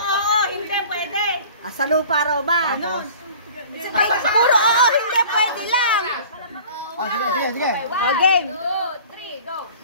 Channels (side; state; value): both; inverted; correlation -0.45